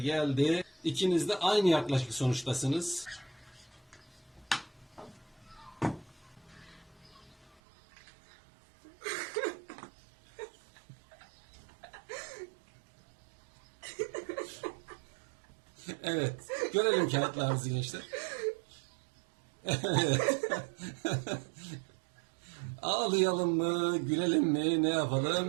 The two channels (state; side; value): drops out; left; at 7.6 s